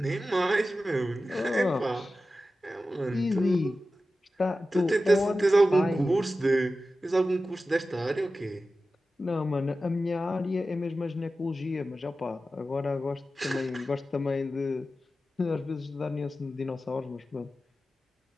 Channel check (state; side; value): normal; both; correlation 0.94